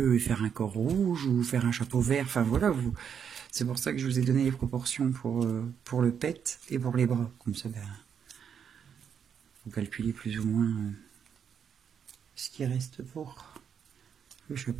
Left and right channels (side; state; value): left; quieter; 7.7 dB